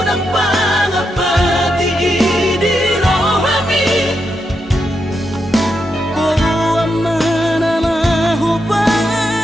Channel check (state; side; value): normal; both; correlation 0.84